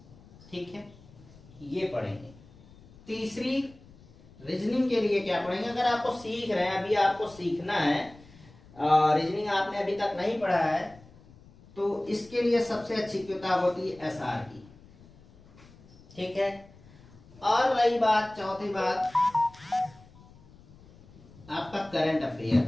ठीक है, ये पढ़ेंगे। तीसरी, रीजनिंग के लिए क्या पढ़ेंगे? अगर आपको सीख रहे हैं, अभी आपको सीखना है, रीजनिंग आपने अभी तक नहीं पढ़ा है, तो इसके लिए सबसे अच्छी किताब होती है एसआर की, ठीक है। और रही बात, चौथी बात, आपका करंट अफेयर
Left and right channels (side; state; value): left; noise; rumble, 24 dB below the sound